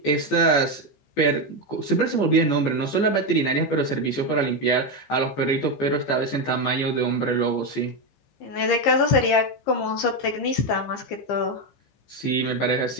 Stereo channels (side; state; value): right; late; 14 ms